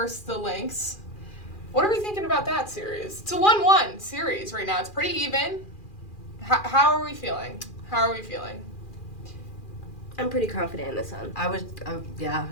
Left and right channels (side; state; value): right; late; 2.4 ms